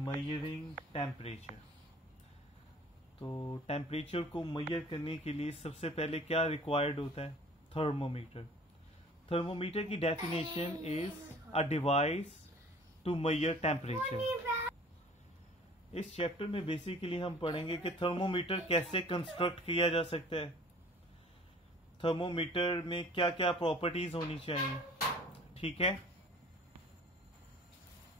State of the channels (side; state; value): both; normal; correlation 0.49